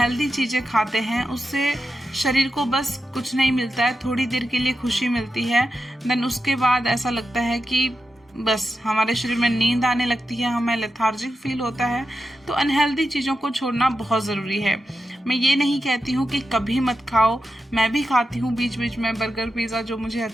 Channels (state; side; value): normal; both; correlation 0.89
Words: चीज़ें खाते हैं उससे शरीर को बस कुछ नहीं मिलता है, थोड़ी देर के लिए खुशी मिलती है, देन उसके बाद ऐसा लगता है कि बस हमारे शरीर में नींद आने लगती है, हमें लेथार्जिक फील होता है। तो अनहेल्दी चीज़ों को छोड़ना बहुत ज़रूरी है। मैं ये नहीं कहती हूँ कि कभी मत खाओ, मैं भी खाती हूँ बीच बीच में बर्गर पिज़्ज़ा जो मुझे